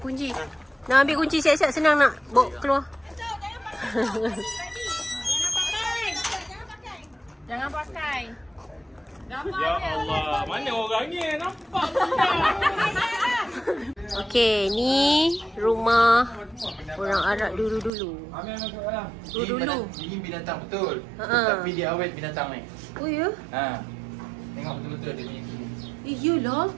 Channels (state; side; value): drops out; left; at 17.9 s